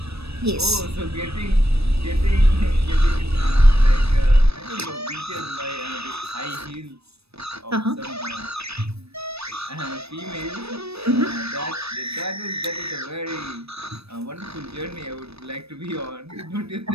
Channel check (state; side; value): late; left; 0.78 ms